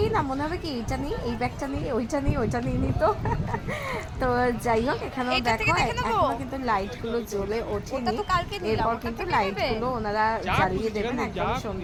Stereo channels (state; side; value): identical; both; correlation 1.00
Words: না মনে হবে কি এইটা নিই, এই ব্যাগটা নিই, ওইটা নিই, ওইটা নিয়ে নিত। তো যাই হোক, এখানেও দেখো এখনো কিন্তু লাইটগুলো জ্বলে ওঠেনি, এরপর কিন্তু লাইটগুলো ওনারা জ্বালিয়ে দেবেন একদম